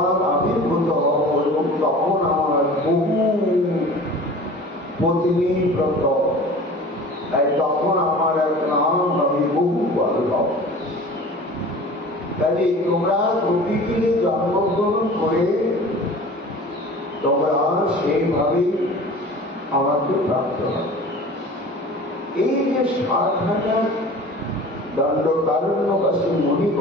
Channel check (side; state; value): both; normal; correlation 0.41